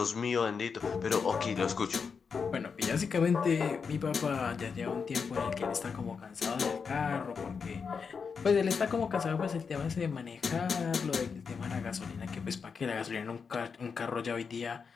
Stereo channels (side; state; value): right; quieter; 5.7 dB